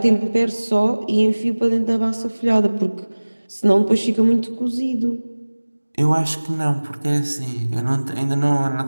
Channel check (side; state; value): both; inverted; correlation -1.00